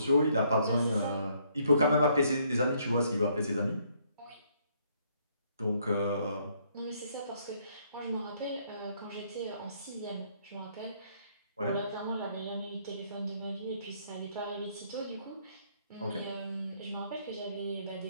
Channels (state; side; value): inverted; both; correlation -0.68